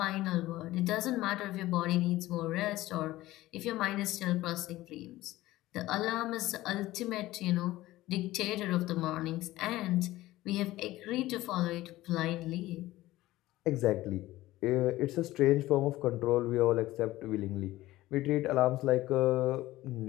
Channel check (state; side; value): quieter; right; 16.8 dB